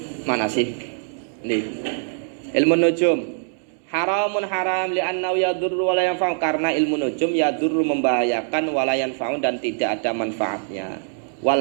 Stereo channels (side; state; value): left; silent; digital silence